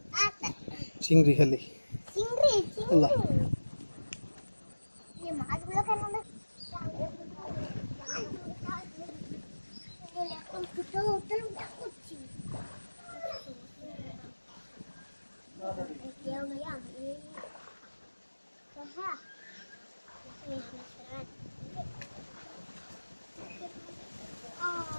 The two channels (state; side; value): inverted; both; correlation -1.00